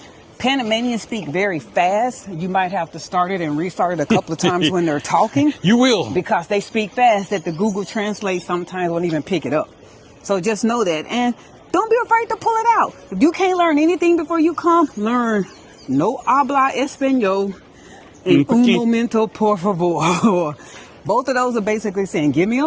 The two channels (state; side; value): identical; both; correlation 1.00